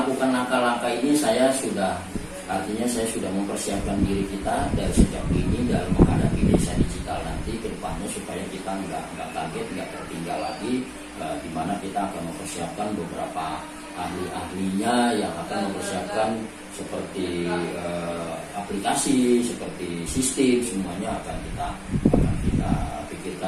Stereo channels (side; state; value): both; identical; correlation 1.00